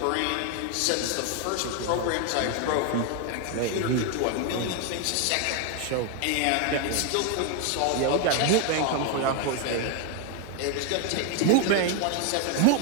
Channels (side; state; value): both; different; correlation 0.01